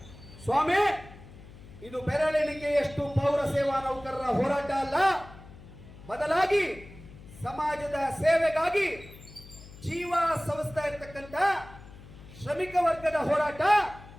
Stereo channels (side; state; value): left; noise; hum, 18 dB below the sound